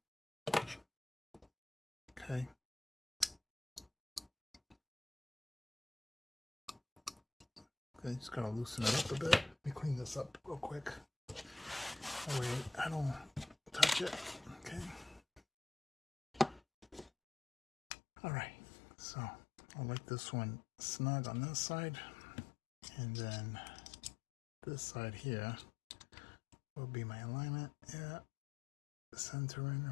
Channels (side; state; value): right; drops out; at 17.1 s